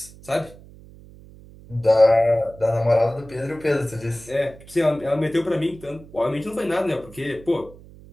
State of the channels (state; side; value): noise; right; hum, 21 dB below the sound